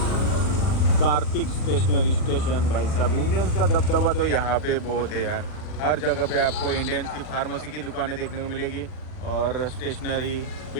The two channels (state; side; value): late; right; 40 ms